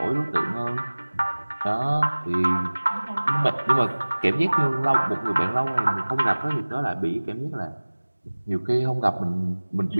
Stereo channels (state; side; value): inverted; both; correlation -1.00